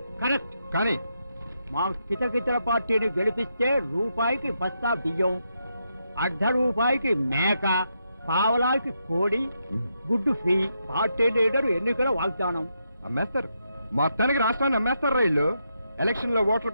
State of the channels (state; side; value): inverted; both; correlation -0.82